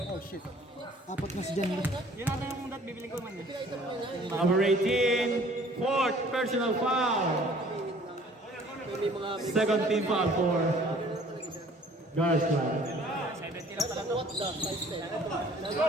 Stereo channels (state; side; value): normal; both; correlation 0.54